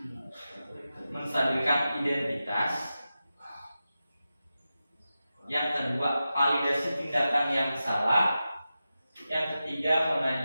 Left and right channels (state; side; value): inverted; both; correlation -0.92